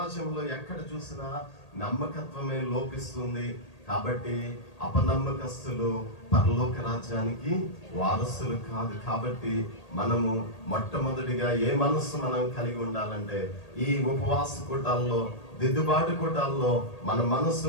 ఎక్కడ చూసినా నమ్మకత్వమే లోపిస్తుంది. కాబట్టి అపనమ్మకస్తులు పరలోక రాజ్యానికి వారసులు కాదు. కాబట్టి మనము మొట్టమొదటిగా ఏ మనస్సు మనం కలిగి ఉండాలంటే, ఈ ఉపవాస కూటాల్లో దిద్దుబాటు కూటాల్లో మన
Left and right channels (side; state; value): right; late; 1.8 ms